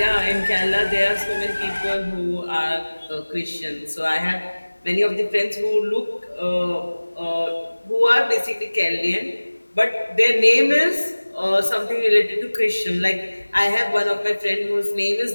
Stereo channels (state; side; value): inverted; both; correlation -1.00